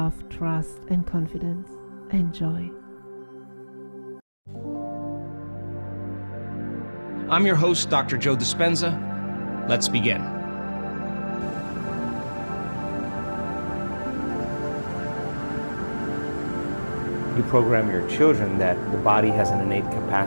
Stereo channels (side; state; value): both; inverted; correlation -1.00